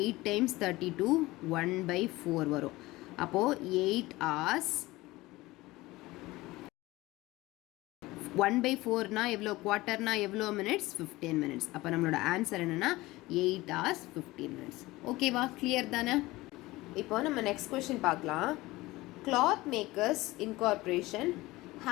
8 times 32, 1/4 வரும். அப்போது 8 hours 1/4னா எவ்வளோ, குவார்ட்டர்னா எவ்வளோ மினிட்ஸ், 15 minutes. அப்போ நம்மளோட ஆன்சர் என்னென்னா 8 hours 15 minutes. ஓகேவா? கிளியர் தானே? இப்போ நம்ம நெக்ஸ்ட் கொஸ்டின் பார்க்கலாம். Cloth makers incorporation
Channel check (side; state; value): right; quieter; 19.6 dB